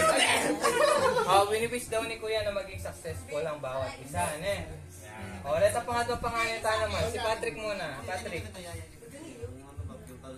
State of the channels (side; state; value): both; identical; correlation 1.00